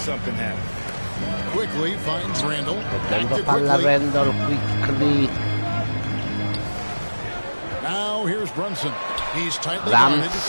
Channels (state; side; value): inverted; both; correlation -1.00